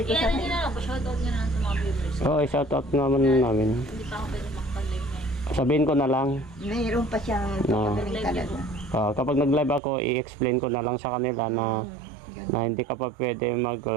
ko sa Hindi na lang, pa-shoutout nga na sa mga viewers. Oo, shoutout naman namin. Hindi pa ako pwede makapag-live ngayon. Sabihin ko na lang, mayroon pa siyang No. pagaling talaga. kapag nag-live ako, i-explain ko na lang sa kanila na Na hindi ka pa pwede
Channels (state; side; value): drops out; left; at 9.8 s